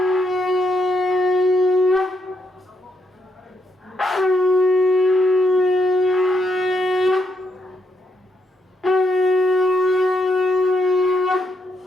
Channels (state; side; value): normal; both; correlation 0.77